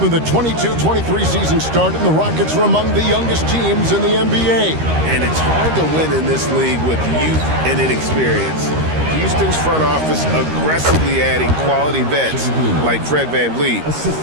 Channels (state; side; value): late; left; 13 ms